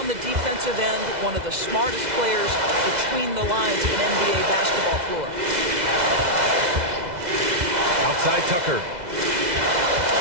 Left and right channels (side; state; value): left; late; 2.0 ms